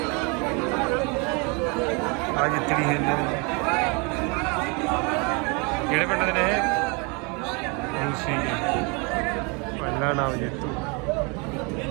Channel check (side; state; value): left; quieter; 31.4 dB